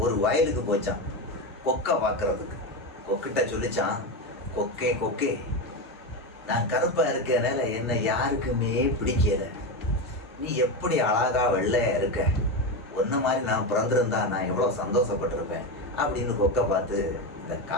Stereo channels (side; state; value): both; normal; correlation 0.15